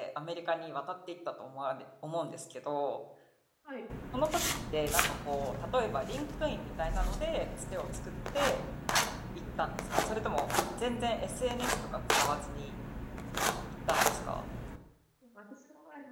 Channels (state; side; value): identical; both; correlation 1.00